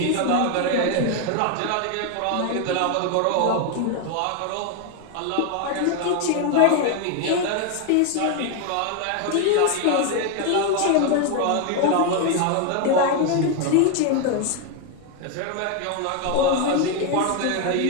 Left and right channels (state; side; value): different; both; correlation 0.01